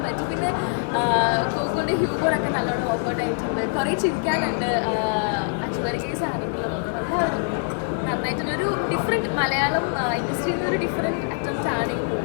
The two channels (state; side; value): silent; right; 63 dB below the other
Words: പറ്റും. പിന്നെ ഗോകുലിൻ്റെ ഹ്യൂമറൊക്കെ നല്ലോണം വർക്കൗട്ട് ആയിട്ടുണ്ട്. കുറേ ചിരിക്കാനുണ്ട്. അച്ചുവരി കേസ് ആണെങ്കിലും എല്ലാവരും നന്നായിട്ടുണ്ട്. ഒരു ഡിഫറെൻറ്റ് മലയാളം ഇൻഡസ്ട്രിയിൽ നിന്ന് ഒരു ഡിഫറെൻറ്റ് അറ്റംപ്റ്റ് ആണ് ഈ